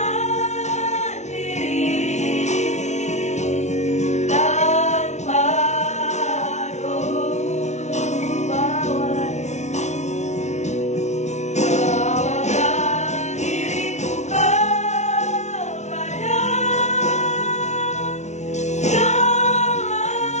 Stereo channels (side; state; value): right; late; 0.33 ms